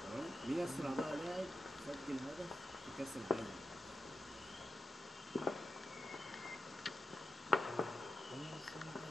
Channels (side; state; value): both; normal; correlation 0.90